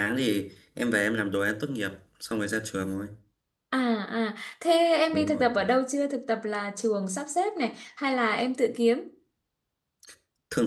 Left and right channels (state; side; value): identical; both; correlation 1.00